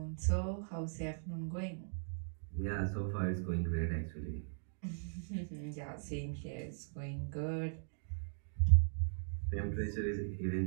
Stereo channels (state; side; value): silent; left; digital silence